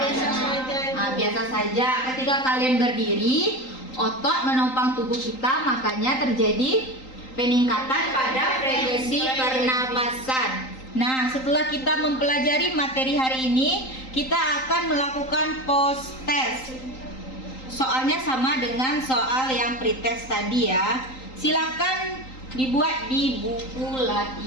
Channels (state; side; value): late; right; 3.8 ms